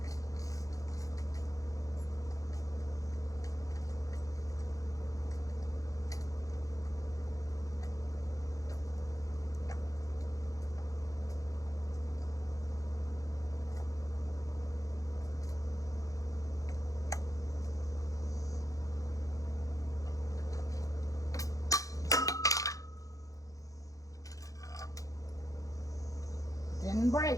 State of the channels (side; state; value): right; late; 0.16 ms